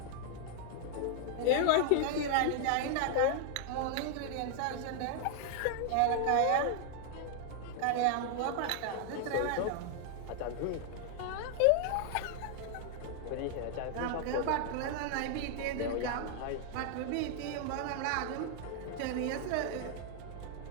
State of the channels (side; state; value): both; different; correlation 0.00